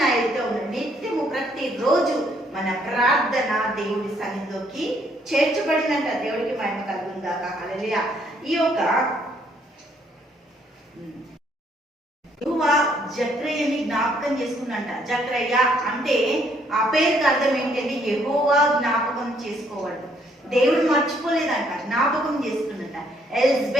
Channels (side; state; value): both; normal; correlation 0.68